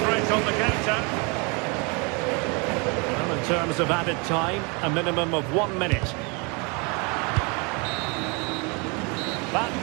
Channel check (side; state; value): left; quieter; 31.0 dB